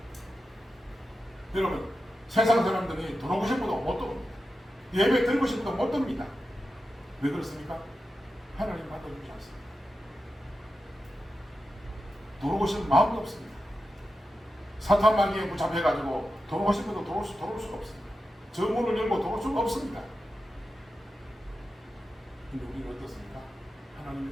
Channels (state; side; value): normal; both; correlation 0.91